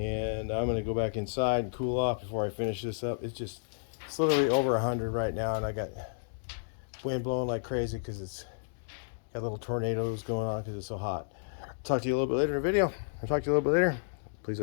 I'm going to go back inside and cool off before I finish this up. It's literally over 100 right now, and I got wind blowing like crazy because it's got little tornadoes going on because it's so hot. Talk to you a little bit later in the video. I'll talk to you a little bit later. Please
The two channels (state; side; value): silent; right; digital silence